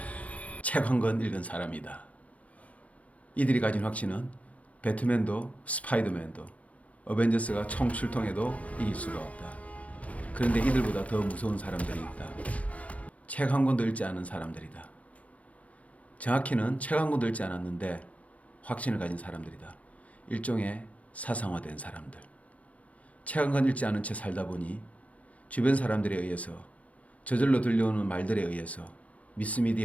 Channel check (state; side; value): late; right; 0.067 ms